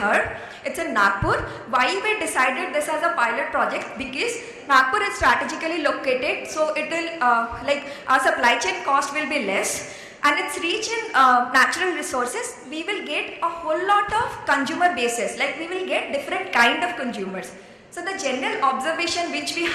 It's in Nagpur. Why we decided this as a pilot project? Because Nagpur is strategically located, so it will like our supply chain cost will be less, and it's rich in natural resources. We will get a whole lot of consumer bases, like we will get different kind of consumers. So the general observation which we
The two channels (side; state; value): both; identical; correlation 1.00